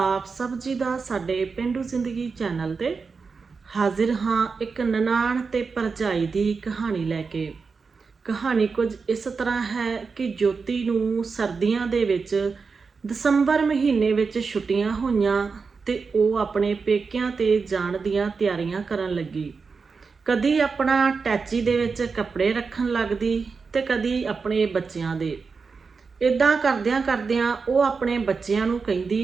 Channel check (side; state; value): left; quieter; 4.9 dB